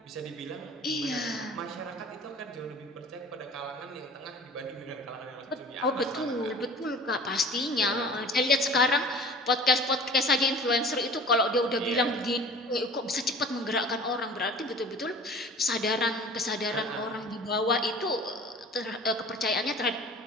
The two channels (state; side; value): normal; both; correlation 0.43